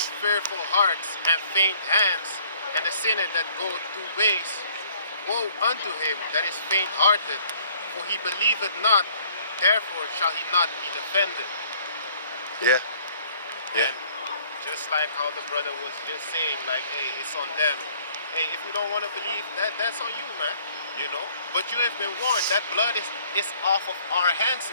fearful hearts and faint hands, and the sinner that goeth two ways. Woe unto him that is faint-hearted, for he believeth not, therefore shall he not be defended. Yeah. And just like how the brother was just saying, like, hey, it's on them. Hey, if you don't want to believe, that's on you, man. You know? But you have been warned. That blood is off of our hands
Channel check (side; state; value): both; inverted; correlation -0.58